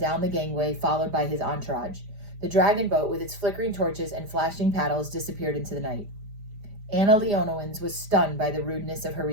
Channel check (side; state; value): left; late; 4.9 ms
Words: the gangway, followed by his entourage. The dragon boat, with its flickering torches and flashing paddles, disappeared into the night. Anna Leonowens was stunned by the rudeness of her